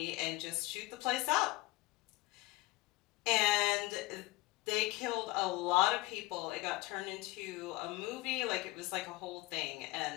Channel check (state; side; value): quieter; right; 21.3 dB